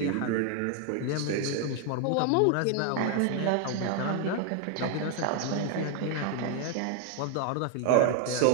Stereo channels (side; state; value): both; different; correlation 0.01